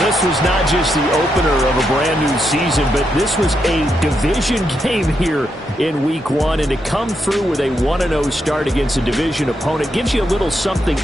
this was not just the opener of a brand-new season, but this was a division game here in Week 1. And to come through with a 1-0 start against a division opponent gives you a little something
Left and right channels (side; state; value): both; normal; correlation 0.82